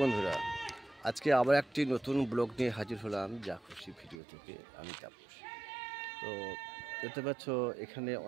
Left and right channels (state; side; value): drops out; left; at 4.2 s